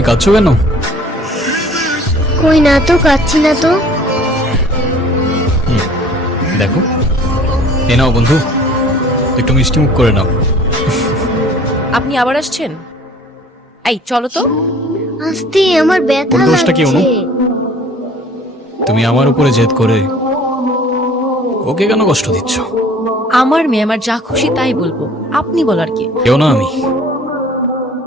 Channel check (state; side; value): normal; both; correlation 0.51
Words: কাঁদছো কেন? কই না তো, কাচ্ছি না তো। দেখো, এ নাও বন্ধু, একটু মিষ্টি মুখ করে নাও। আপনি আবার আসছেন? এই চলো তো। আস্তে, আমার ব্যথা ওর দোষটা কি, অনু? লাগছে। তুমি আমার উপরে জেদ করে ওকে কেন কষ্ট দিচ্ছ? আমার মেয়ে আমার যা খুশি তাই বলবো, আপনি বলার কি? কেউ না আমি,